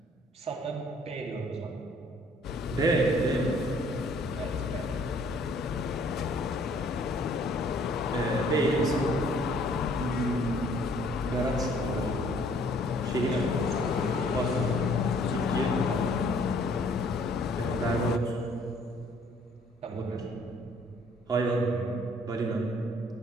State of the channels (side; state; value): both; normal; correlation 0.59